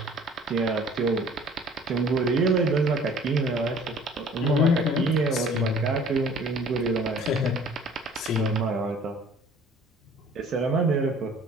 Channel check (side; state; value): both; normal; correlation 0.51